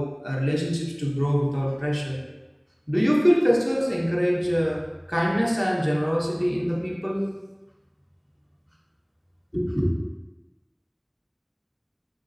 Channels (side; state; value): both; identical; correlation 1.00